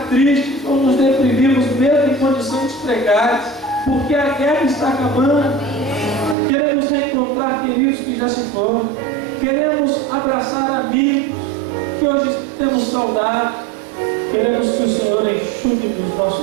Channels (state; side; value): drops out; left; at 6.4 s